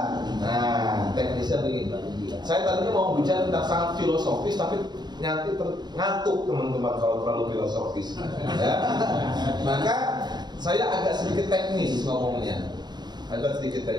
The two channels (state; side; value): late; left; 0.21 ms